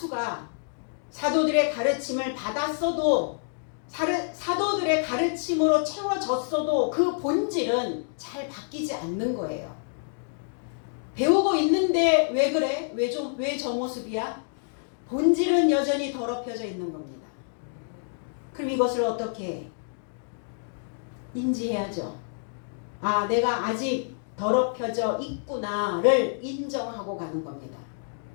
사도들의 가르침을 받았어도, 사도들의 가르침으로 채워졌어도 그 본질은 잘 바뀌지 않는 거예요. 배우고 있는데 왜 그래? 왜 저 모습이야? 본질은 여전히 더럽혀져 있는 겁니다. 그럼 이것을 어떻게 인지해야죠? 아, 내가 아직 더럽혀져 있구나를 인정하고 가는 겁니다.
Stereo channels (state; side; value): silent; right; digital silence